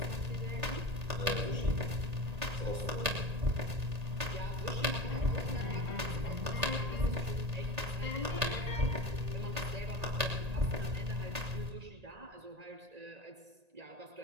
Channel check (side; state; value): left; late; 1.8 ms